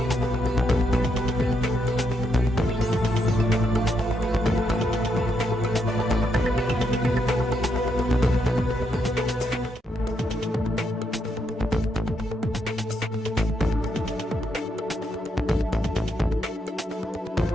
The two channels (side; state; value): both; normal; correlation 0.79